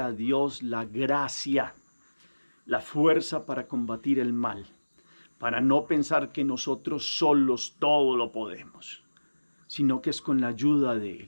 Dios la gracia, la fuerza para combatir el mal, para no pensar que nosotros solos todo lo podemos, sino que es con la ayuda de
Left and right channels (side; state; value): both; inverted; correlation -1.00